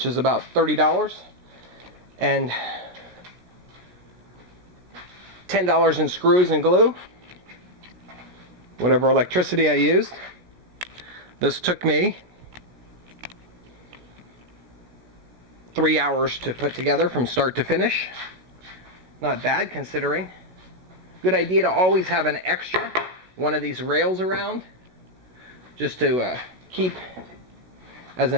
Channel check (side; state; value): left; late; 16 ms